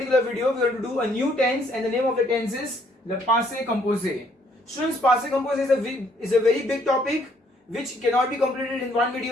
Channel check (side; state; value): both; normal; correlation 0.66